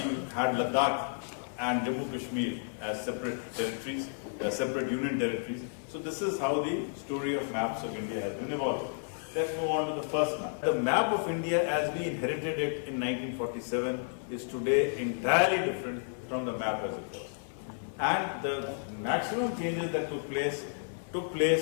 had Ladakh and Jammu Kashmir as separate territories, separate union territories. So this is how the story of maps of India has been evolved. Let's move on to the first map. The map of India as we inherited it in 1947 is today entirely different from the map as it was. And the maximum changes that took place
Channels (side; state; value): right; silent; 57 dB below the other